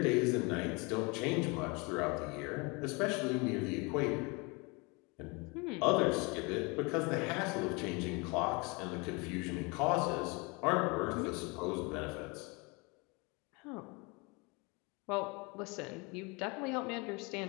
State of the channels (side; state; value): right; quieter; 28.5 dB